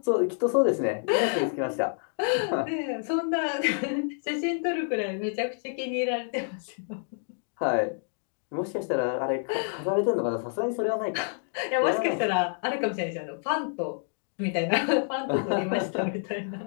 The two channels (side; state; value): right; silent; digital silence